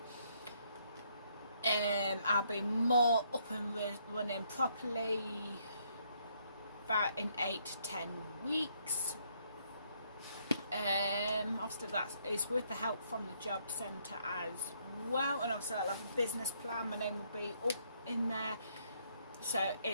I'll be more up and running properly about in 8 to 10 weeks. Obviously that is with the help from the job centre as well, and obviously I'll have a business plan. My name will be up in there, so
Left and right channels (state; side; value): inverted; both; correlation -0.70